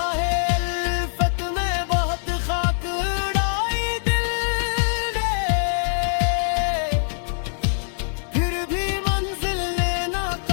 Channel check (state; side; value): silent; right; 63 dB below the other